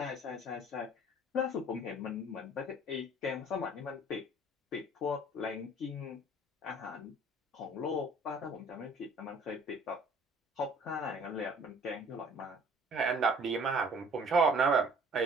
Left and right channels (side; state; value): both; normal; correlation 0.53